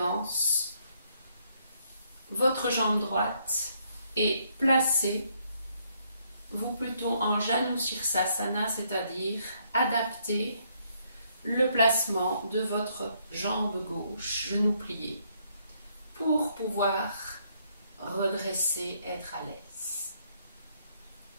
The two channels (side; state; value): both; inverted; correlation -0.71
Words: votre jambe droite et placer vous plutôt en Janu Sirsasana, c'est-à-dire adapter le placement de votre jambe gauche, genou plié, pour pouvoir redresser, être à l'aise.